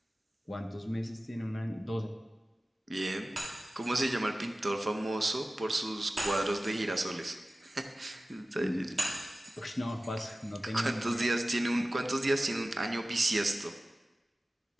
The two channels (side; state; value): both; normal; correlation 0.96